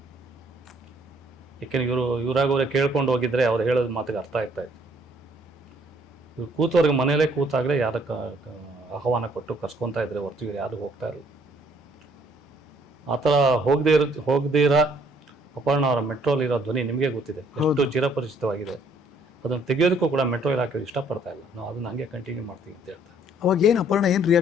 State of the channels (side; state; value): both; normal; correlation 0.63